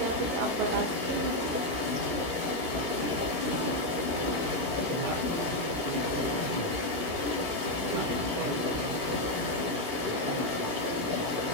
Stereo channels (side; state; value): left; late; 17 ms